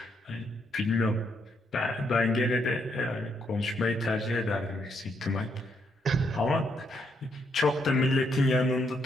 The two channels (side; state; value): both; normal; correlation 0.75